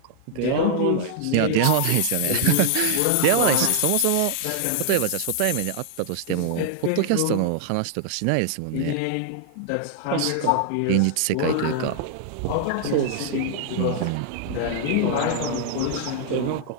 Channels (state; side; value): different; both; correlation 0.00